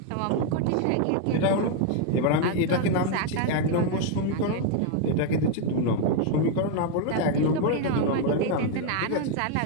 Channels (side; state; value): both; different; correlation 0.01